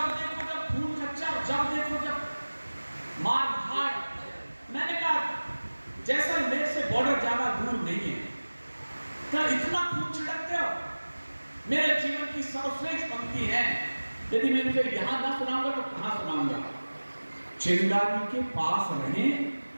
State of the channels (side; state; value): both; inverted; correlation -1.00